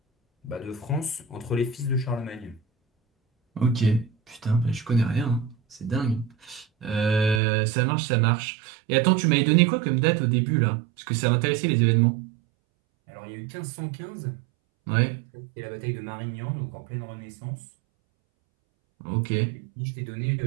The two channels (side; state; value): left; drops out; at 7.4 s